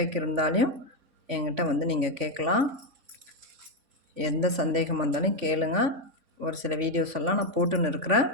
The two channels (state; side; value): late; left; 3.5 ms